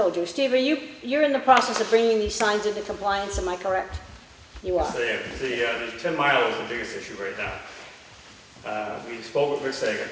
you? Steve, you're in the process of bringing these signs into compliance, am I correct? You are. So yeah, the 10 mile is the biggest issue right now. We spoke with Rick Sager.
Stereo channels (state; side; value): identical; both; correlation 1.00